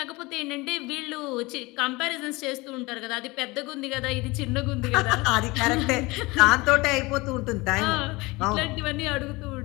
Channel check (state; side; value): quieter; right; 23.2 dB